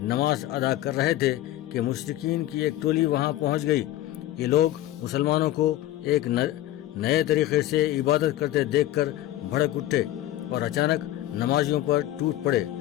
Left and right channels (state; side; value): quieter; right; 14.2 dB